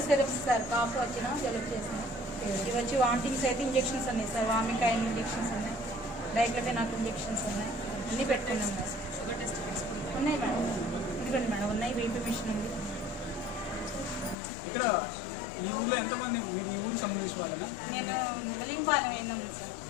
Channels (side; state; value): right; drops out; at 14.4 s